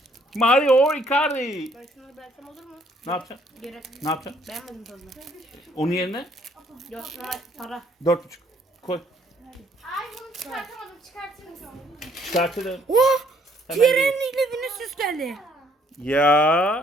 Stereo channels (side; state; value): both; normal; correlation 0.65